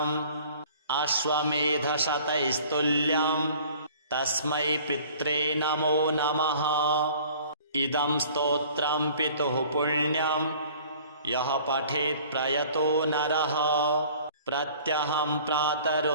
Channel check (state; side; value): inverted; both; correlation -0.50